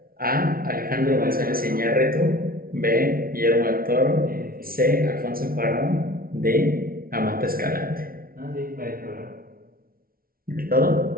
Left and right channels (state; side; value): late; left; 0.43 ms